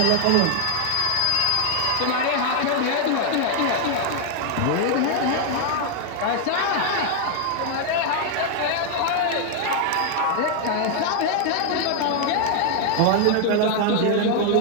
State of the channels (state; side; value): different; both; correlation 0.00